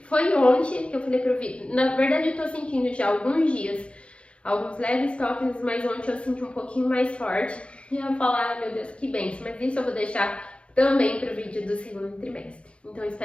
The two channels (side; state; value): right; late; 0.059 ms